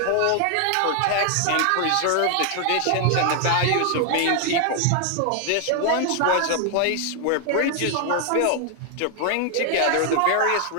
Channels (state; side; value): different; both; correlation 0.00